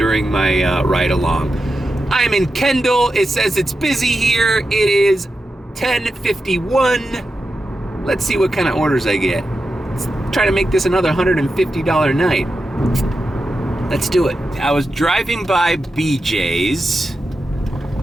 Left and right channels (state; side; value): normal; both; correlation 0.90